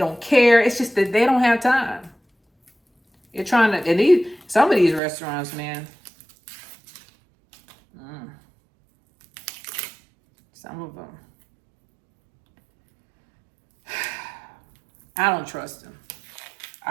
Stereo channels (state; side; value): drops out; left; at 5.0 s